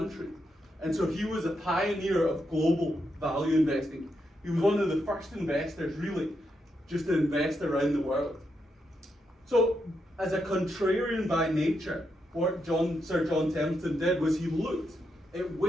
And so he was a pioneer of global value investing. He was one of the first investors, really, just to invest around the world. So, as a contrarian by nature, what Sir John Templeton did was he looked at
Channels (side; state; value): both; normal; correlation 0.82